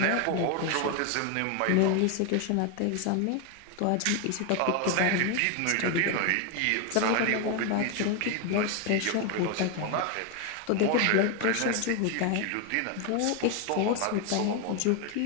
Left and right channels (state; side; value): different; both; correlation 0.01